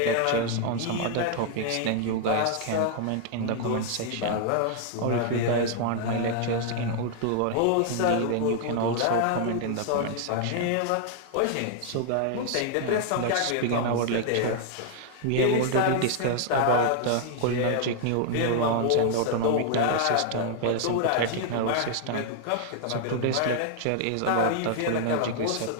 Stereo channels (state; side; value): different; both; correlation -0.01